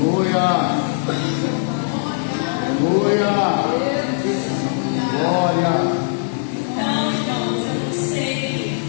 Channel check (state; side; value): silent; right; 58 dB below the other